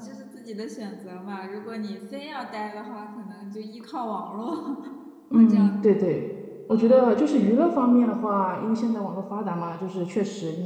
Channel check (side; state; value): both; identical; correlation 1.00